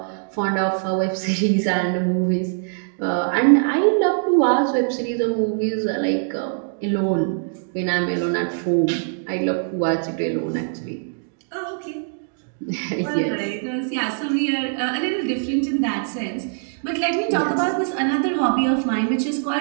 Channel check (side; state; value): left; silent; digital silence